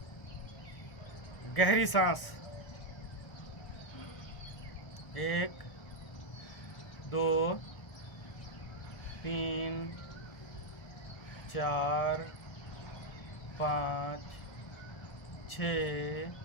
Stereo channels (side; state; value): right; late; 1.6 ms